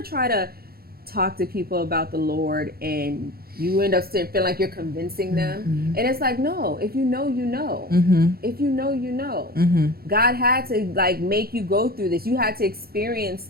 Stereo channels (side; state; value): left; late; 0.44 ms